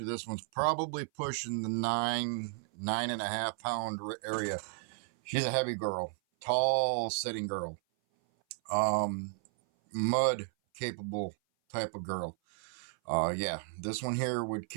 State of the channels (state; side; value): silent; left; 55 dB below the other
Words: this one's probably pushing the 9.5 pound area. She's a heavy girl, tall sitting girl, mud capable type of girl. Yeah, this one here would